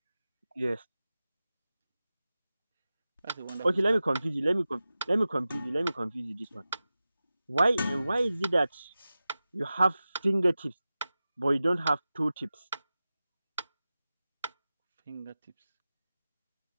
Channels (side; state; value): both; inverted; correlation -0.95